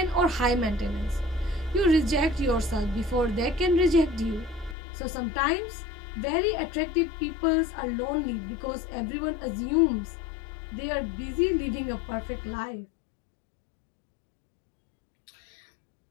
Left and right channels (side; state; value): right; drops out; at 4.8 s